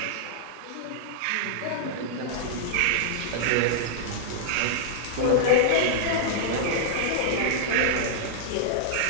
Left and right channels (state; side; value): different; both; correlation -0.01